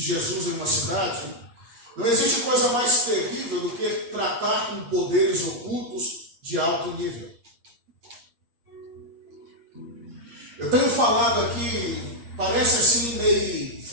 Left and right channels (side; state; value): left; late; 8.5 ms